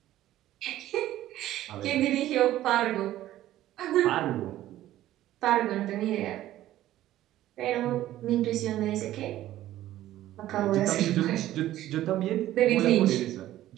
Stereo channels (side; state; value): left; quieter; 13.9 dB